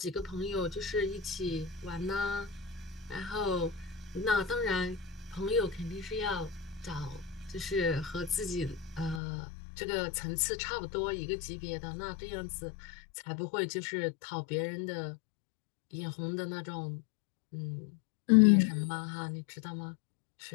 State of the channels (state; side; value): drops out; right; at 9.2 s